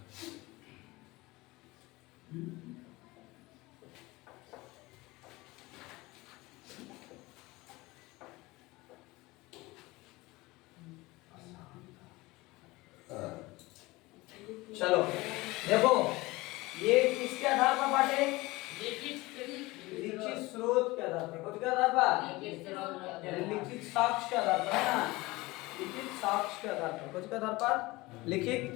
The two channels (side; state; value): right; quieter; 21.3 dB